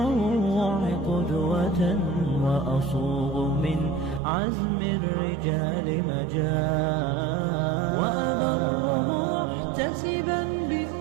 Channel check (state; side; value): drops out; left; at 4.2 s